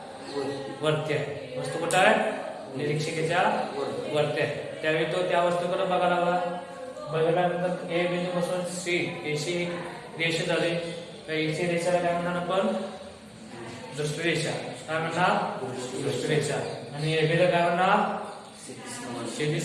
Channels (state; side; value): identical; both; correlation 1.00